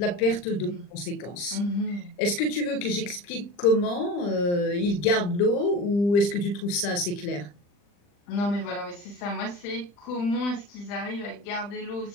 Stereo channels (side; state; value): right; late; 40 ms